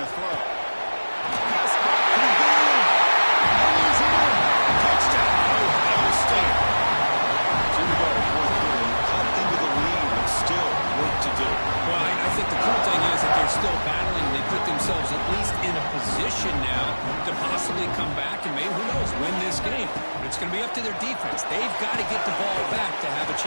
to throw. Pass caught. And he's in. Touchdown, Ohio State. Here we go. Fourth quarter. Cut into the lead, but still work to do. Well, I think the cool thing is that they're still battling. They put themselves at least in a position now to possibly come back and maybe, who knows, win this game. But it's going to be up to their defense. They've got to get the ball back to have a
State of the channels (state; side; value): inverted; both; correlation -1.00